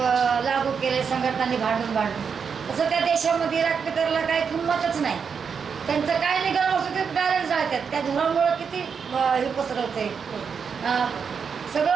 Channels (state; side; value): quieter; left; 6.3 dB